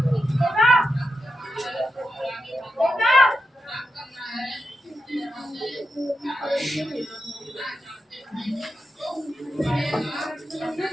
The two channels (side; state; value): both; normal; correlation 0.87